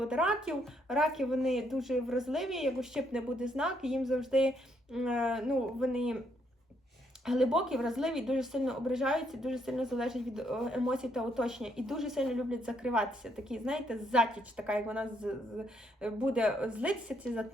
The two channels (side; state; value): both; normal; correlation 0.73